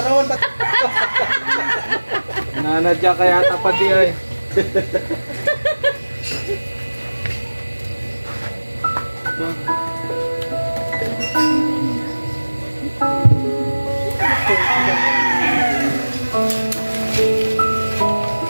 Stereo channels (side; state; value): both; inverted; correlation -1.00